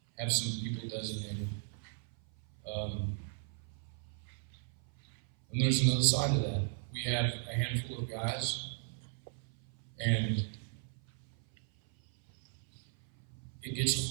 have some people designated. And there's another side of that. We have a handful of guys, and it gets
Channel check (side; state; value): left; silent; 54 dB below the other